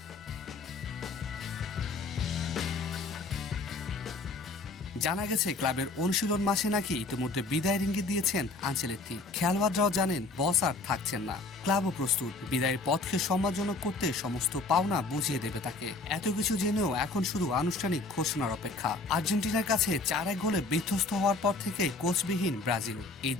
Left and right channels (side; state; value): right; quieter; 3.5 dB